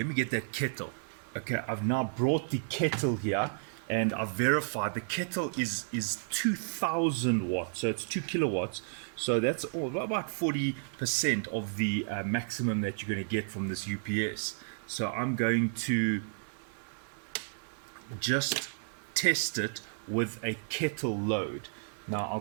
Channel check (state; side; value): silent; left; 56 dB below the other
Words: me get that kettle. Okay, I've now brought the kettle here and I've verified the kettle is 2000 watts, so it's 2 kilowatts. So that's about 40% of the maximum that you're going to get from this UPS. So I'm going to just test it with a kettle load. Now